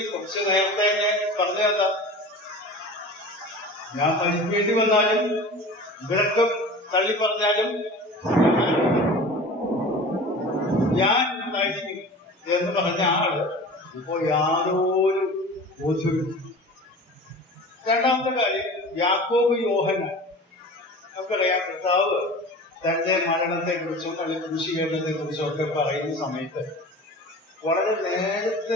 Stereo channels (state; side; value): normal; both; correlation 0.37